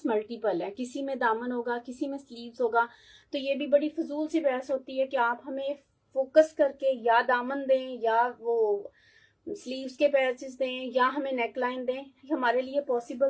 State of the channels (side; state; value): both; identical; correlation 1.00